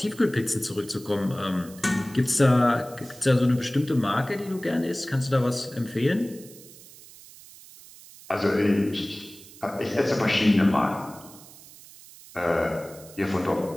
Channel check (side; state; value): right; noise; hiss, 20 dB below the sound